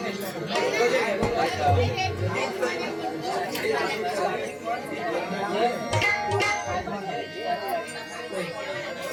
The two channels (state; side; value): identical; both; correlation 1.00